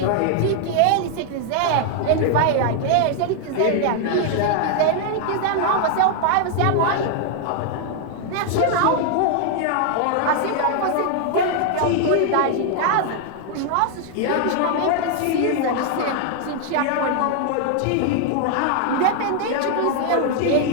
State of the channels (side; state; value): both; different; correlation 0.00